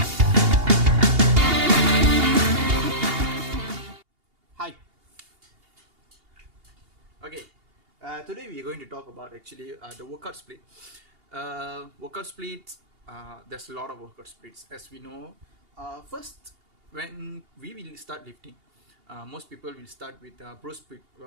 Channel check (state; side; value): late; left; 2.8 ms